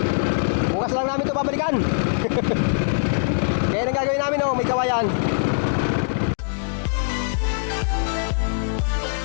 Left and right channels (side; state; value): right; silent; digital silence